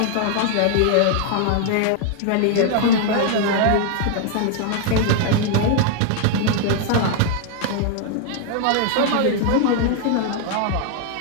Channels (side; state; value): both; different; correlation 0.00